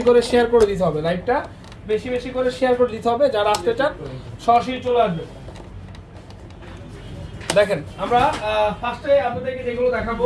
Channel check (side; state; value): both; identical; correlation 1.00